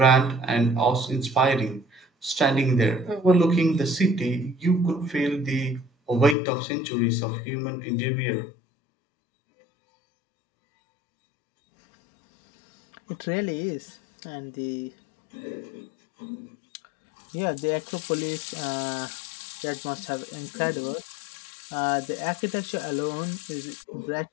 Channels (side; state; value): right; drops out; at 6.4 s